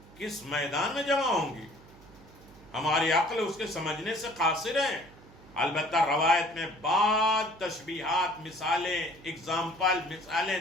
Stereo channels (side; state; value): right; noise; hum, 22 dB below the sound